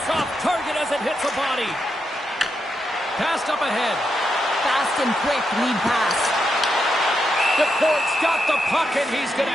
off target as it hits the body. Passed up ahead. Fast and quick lead pass. DeFort's got the puck and he's going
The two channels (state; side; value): normal; both; correlation 0.84